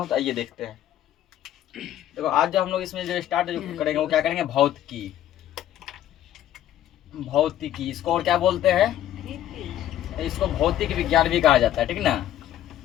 तो आइए देखते हैं। देखो, आज जो हम लोग इसमें जो स्टार्ट करेंगे वो क्या करेंगे, भौतिकी। भौतिकी इसको और क्या बोलते हैं, इसको भौतिक विज्ञान भी कहा जाता है, ठीक ना।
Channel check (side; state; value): right; quieter; 12.1 dB